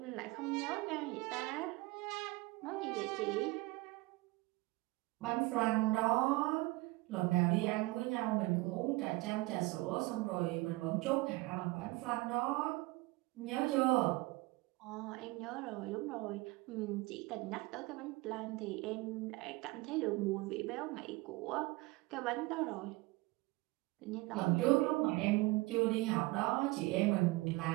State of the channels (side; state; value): left; quieter; 22.6 dB